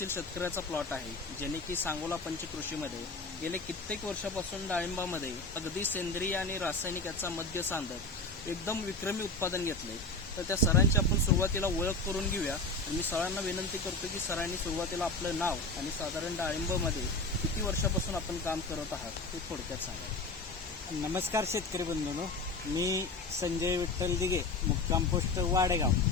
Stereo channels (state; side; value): quieter; right; 3.1 dB